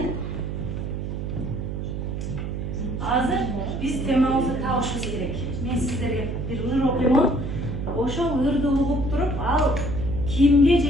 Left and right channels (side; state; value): right; noise; hum, 4 dB below the sound